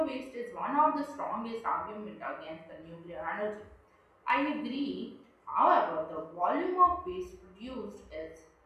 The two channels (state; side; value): identical; both; correlation 1.00